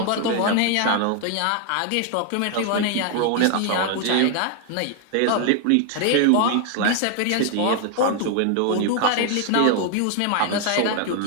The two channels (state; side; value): different; both; correlation 0.00